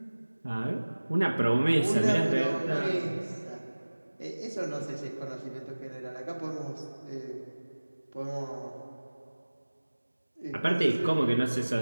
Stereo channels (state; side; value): inverted; both; correlation -1.00